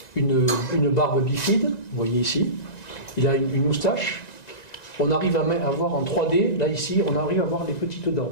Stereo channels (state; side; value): late; right; 1.9 ms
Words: une barbe bifide, vous voyez ici, il a une moustache. On arrive à voir en 3D, là ici, on arrive à voir les petites dents